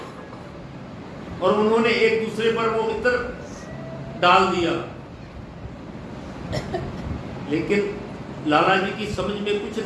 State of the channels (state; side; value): identical; both; correlation 1.00